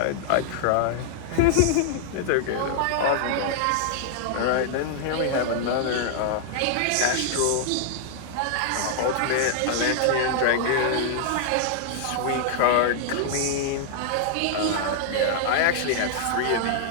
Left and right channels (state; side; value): different; both; correlation -0.01